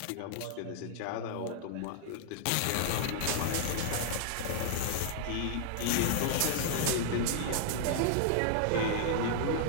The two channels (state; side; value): different; both; correlation -0.01